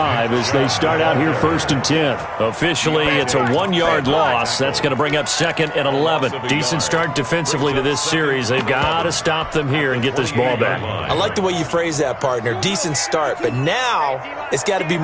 as they start out here 1st and 10. Officially, it's a 1-yard loss. That's going to bring up 2nd and 11. Decent start defensively to this series. They've got to stop them here and get this ball back. I like the way you phrase that, partner. Decent start, but now it's got to be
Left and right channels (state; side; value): identical; both; correlation 1.00